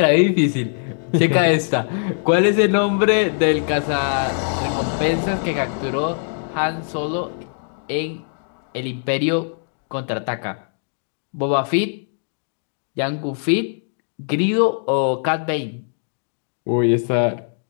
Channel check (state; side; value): silent; right; digital silence